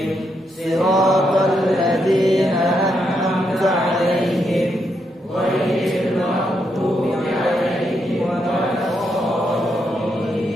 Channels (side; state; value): both; normal; correlation 0.80